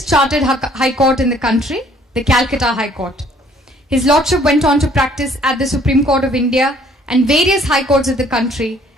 chartered High Court in the country, the Calcutta High Court. His Lordship went on to practice at the Supreme Court of India and various High Courts of the country,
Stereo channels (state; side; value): normal; both; correlation 0.60